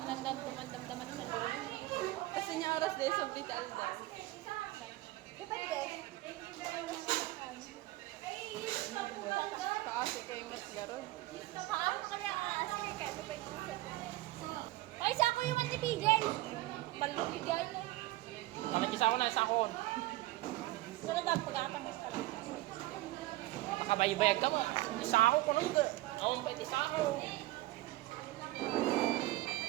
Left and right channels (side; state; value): left; quieter; 18.5 dB